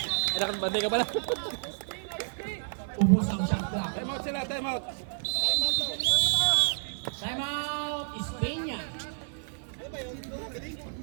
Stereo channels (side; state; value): left; silent; 58 dB below the other